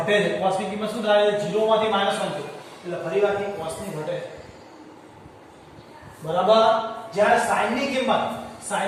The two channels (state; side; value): identical; both; correlation 1.00